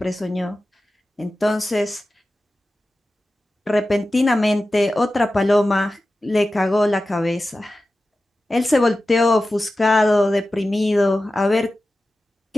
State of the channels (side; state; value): both; normal; correlation 0.94